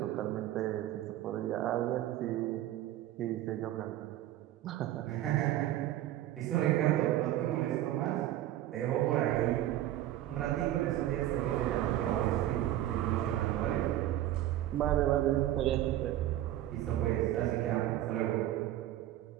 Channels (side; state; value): left; quieter; 13.6 dB